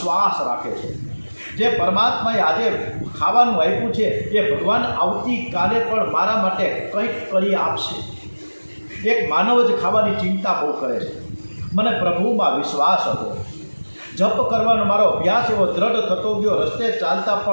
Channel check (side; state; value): both; inverted; correlation -1.00